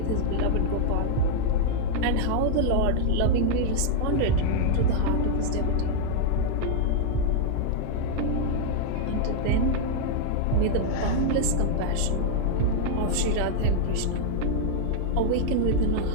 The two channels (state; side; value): different; both; correlation -0.01